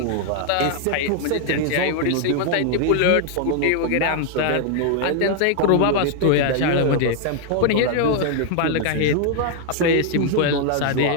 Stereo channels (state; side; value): different; both; correlation 0.00